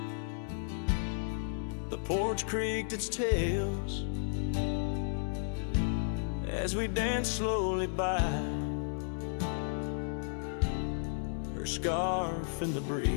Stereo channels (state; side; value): silent; right; digital silence